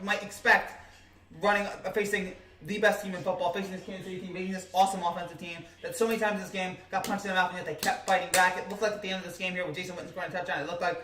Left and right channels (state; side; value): identical; both; correlation 1.00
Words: might expect facing the best team in football, facing this Kansas City team, facing this awesome offensive team that so many times this game got punched in the mouth, and yet they kept fighting back. It looked like at the end of this game here with Jason Witten scoring a touchdown, it looked like,